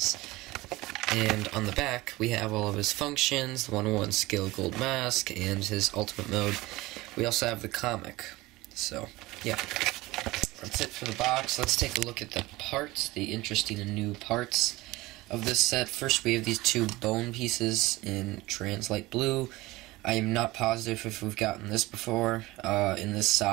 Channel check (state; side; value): quieter; left; 20.0 dB